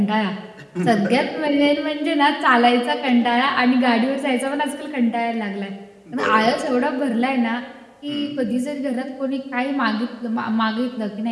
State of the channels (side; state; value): both; identical; correlation 1.00